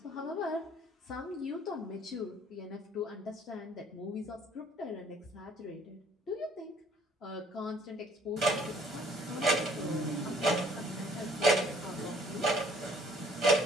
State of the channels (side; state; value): both; normal; correlation 0.59